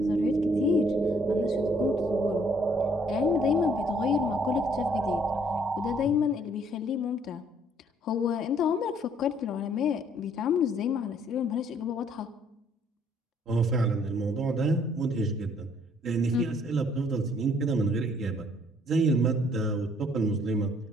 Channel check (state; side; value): normal; both; correlation 0.63